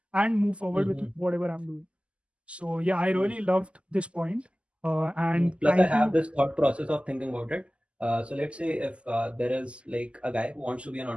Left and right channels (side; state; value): left; late; 0.056 ms